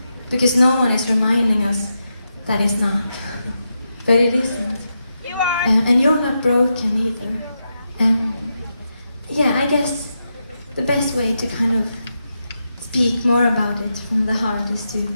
because no one is reminding us that it's not, but it isn't. And you're not broken either. Yeah, I guess the best way to kind of speak more about it from the heart is to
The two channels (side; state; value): both; inverted; correlation -0.85